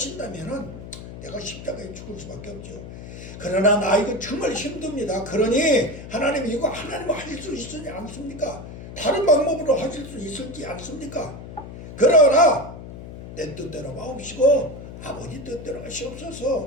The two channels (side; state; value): left; noise; hum, 12 dB below the sound